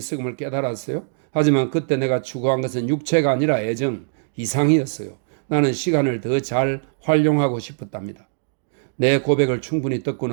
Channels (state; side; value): silent; left; digital silence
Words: 깨달았어요. 하지만 그때 내가 추구한 것은 육체가 아니라 애정, 이상이었어요. 나는 시간을 더 잘 활용하고 싶었답니다. 내 고백을 충분히 듣고